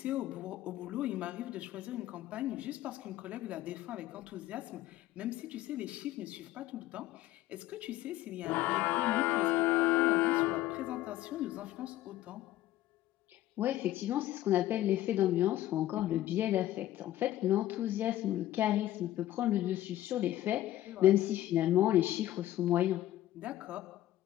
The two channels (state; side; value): quieter; right; 14.2 dB